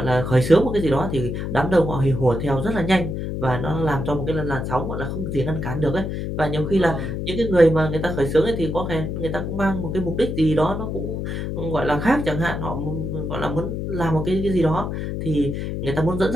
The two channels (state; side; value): noise; left; hum, 4 dB below the sound